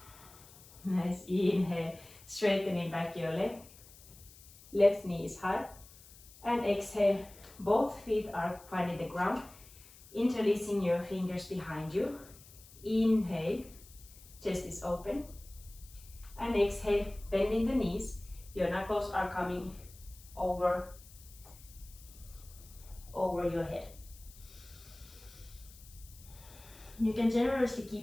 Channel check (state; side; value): noise; left; hiss, 21 dB below the sound